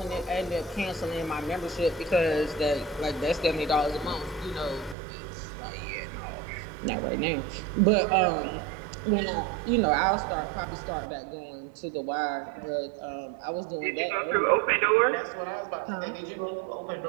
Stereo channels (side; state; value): left; drops out; at 5.0 s